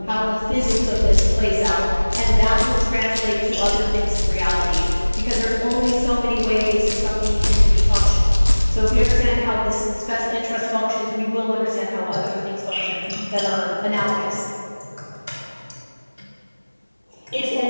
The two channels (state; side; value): inverted; both; correlation -1.00